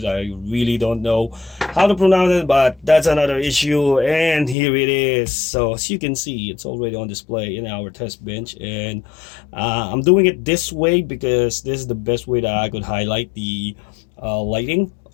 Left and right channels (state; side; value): drops out; right; at 4.5 s